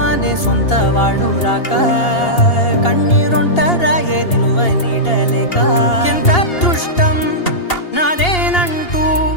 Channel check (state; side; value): late; right; 2.8 ms